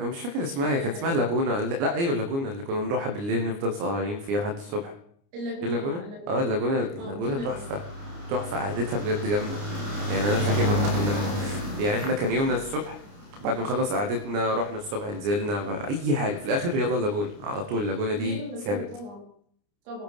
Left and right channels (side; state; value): left; late; 29 ms